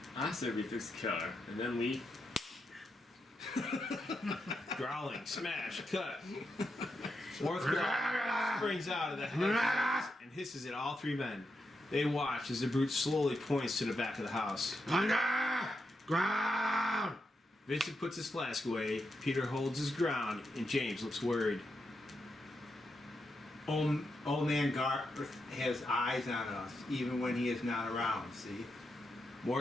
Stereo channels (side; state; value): both; normal; correlation 0.84